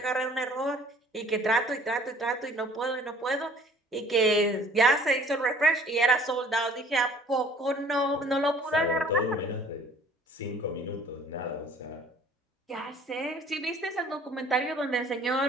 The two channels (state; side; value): normal; both; correlation 0.52